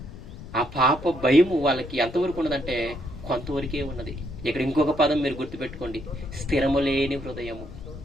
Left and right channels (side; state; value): left; noise; rumble, 14 dB below the sound